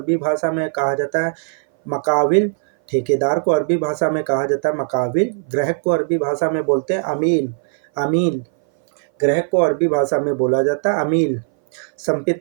भाषा में कहा जाता है मकाविल। ठेकेदार को अरबी भाषा में कहा जाता है मकाविल। ग्राहक को अरबी भाषा में बोलते हैं अमील। अमील ग्राहक को अरबी भाषा में बोला जाता है अमील।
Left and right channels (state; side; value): silent; left; 60 dB below the other